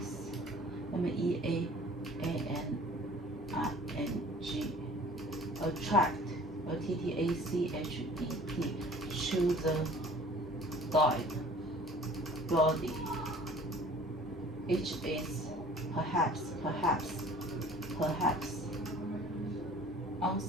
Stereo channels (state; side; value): normal; both; correlation 0.49